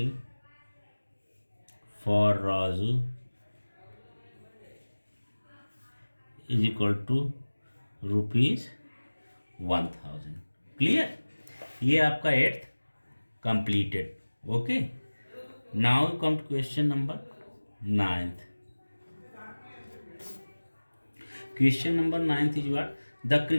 for Raju is equal to rupees 1000. Clear? ये आपका 8th completed. Okay, now come to question number 9th. Question number 9th is what, the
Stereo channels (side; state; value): both; inverted; correlation -1.00